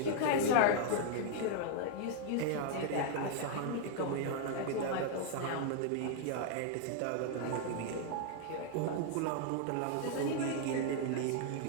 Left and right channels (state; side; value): different; both; correlation 0.00